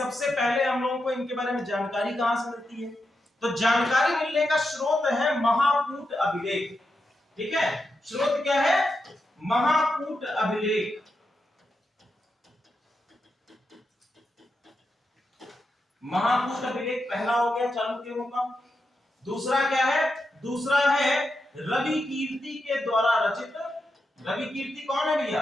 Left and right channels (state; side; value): normal; both; correlation 0.87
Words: पहले हम लोगों को इनके बारे में जानकारी कहां से मिलती है? तो जानकारी मिलने का स्रोत है महाकूट अभिलेख। ठीक है, स्रोत क्या है? महाकूट अभिलेख। महाकूट अभिलेख पहला हो गया चालुक्यों का। दूसरा क्या है? दूसरा है रवि कीर्ति के द्वारा रचित। रवि कीर्ति कौन है